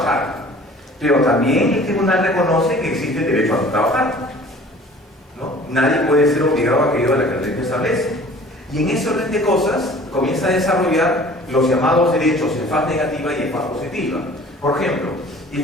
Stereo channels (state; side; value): normal; both; correlation 0.48